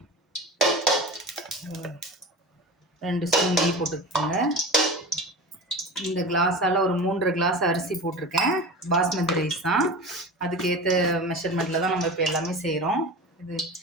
2 ஸ்பூன் நெய் போட்டுக்கோங்க. இந்த கிளாஸால் ஒரு 3 கிளாஸ் அரிசி போட்டிருக்கேன். பாஸ்மதி ரைஸ் தான். அதுக்கேற்ற மெஷர்மெண்ட்டில் தான் நம்ம இப்போ எல்லாமே செய்கிறோம். இது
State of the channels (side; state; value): both; normal; correlation 0.31